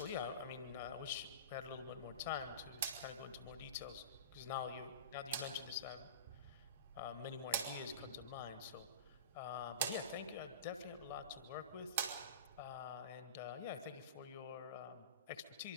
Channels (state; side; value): inverted; both; correlation -0.32